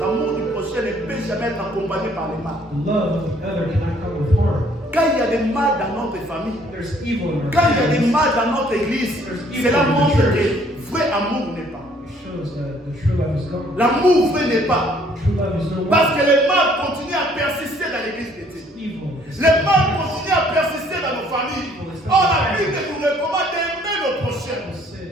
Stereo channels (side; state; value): both; normal; correlation 0.61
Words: du prochain ne peut jamais être accompagné par le mal. The love of the other cannot come with harm. Quand il y a des mal dans notre famille, There's evil in our quand il y a des families. mal dans notre église, cela montre que vrai amour n'est pas. It shows that the true love is gone. L'amour vrai n'est pas. True love is no Parce more. que le mal continue à persister dans l'église de Dieu. Evil is Le mal continue à persister dans nos familles. Or, la Bible nous recommande d'aimer nos prochains. Bible